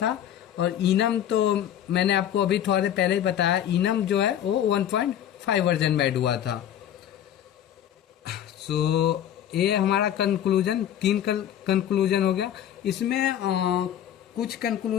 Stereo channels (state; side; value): quieter; right; 10.6 dB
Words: और इनम तो मैंने आपको अभी थोड़ा देर पहले ही बताया, इनम जो है वो 1.5 वर्जन में ऐड हुआ था। सो ये हमारा कंक्लूजन, 3 कंक्लूजन हो गया। इसमें कुछ